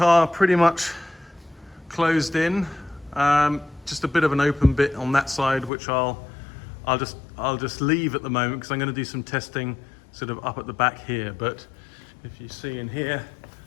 pretty much closed in. Just a bit of an open bit on that side, which I'll just leave at the moment, because I'm going to do some testing sort of up at the back here. But if you see in here,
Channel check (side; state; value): right; drops out; at 5.7 s